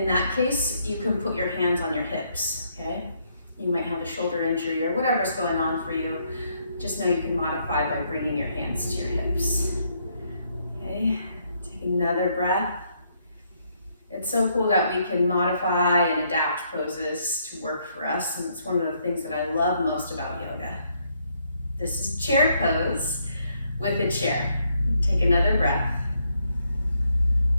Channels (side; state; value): both; inverted; correlation -0.73